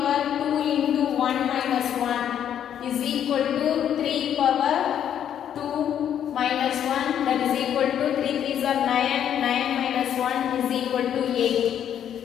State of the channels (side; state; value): right; quieter; 9.6 dB